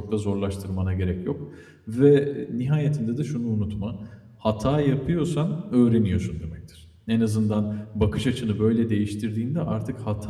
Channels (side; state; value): both; identical; correlation 1.00